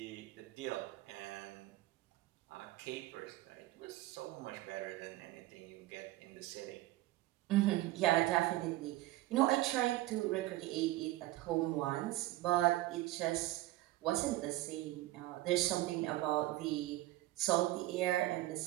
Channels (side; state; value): left; quieter; 16.9 dB